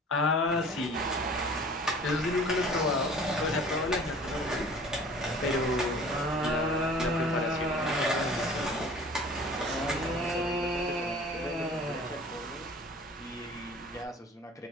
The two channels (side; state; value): both; normal; correlation 0.46